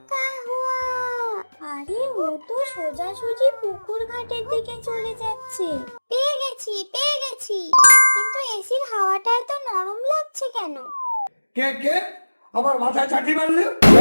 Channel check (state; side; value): inverted; both; correlation -1.00